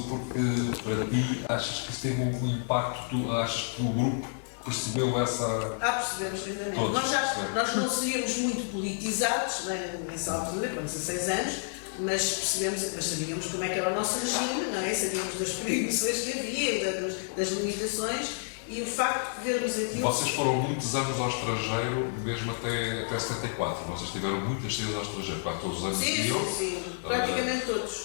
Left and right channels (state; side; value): silent; right; digital silence